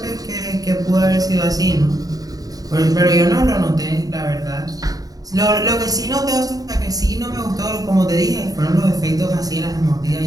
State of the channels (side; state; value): left; late; 0.18 ms